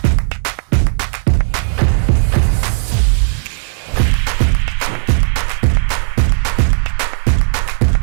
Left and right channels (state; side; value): silent; left; digital silence